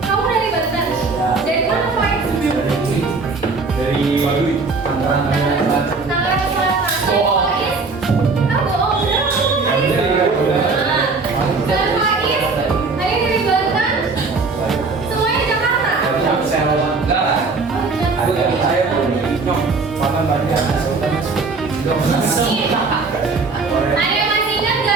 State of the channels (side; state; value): left; quieter; 4.1 dB